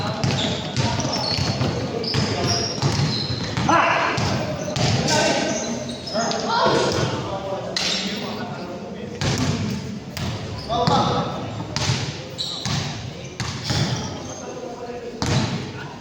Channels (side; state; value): both; identical; correlation 1.00